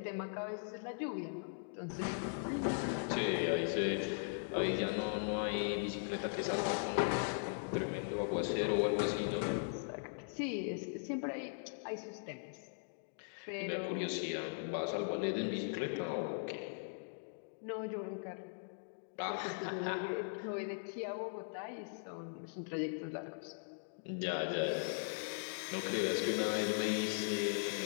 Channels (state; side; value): silent; right; digital silence